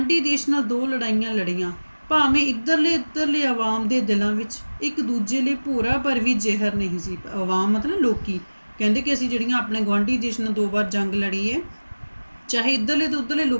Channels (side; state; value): both; inverted; correlation -1.00